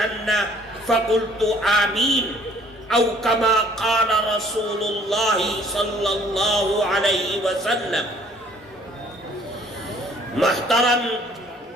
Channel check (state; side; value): normal; both; correlation 0.58